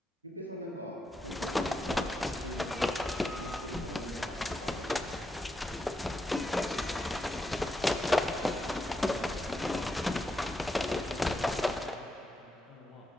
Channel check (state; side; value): normal; both; correlation 0.83